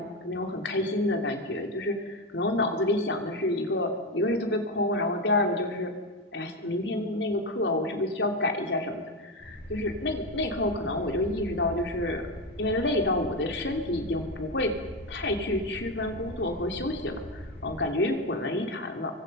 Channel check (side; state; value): both; normal; correlation 0.14